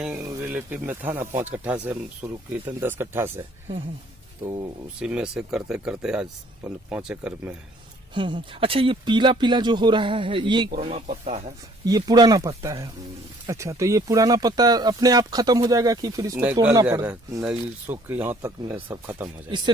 रिलेटिव में था ना, 5 कट्ठा से हम शुरू किए थे, 10 कट्ठा से, तो उसी में से करते करते आज 5 एकड़ में है। अच्छा, ये पीला पीला जो हो रहा है ये पुराना पत्ता है। ये पुराना पत्ता है। अच्छा, तो ये पुराना पत्ता अपने आप खत्म हो जाएगा कि फिर इसको तोड़ना पड़ेगा? नहीं, सूख के यहाँ तक में सब खत्म हो जाएगा। इससे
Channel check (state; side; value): normal; both; correlation 0.59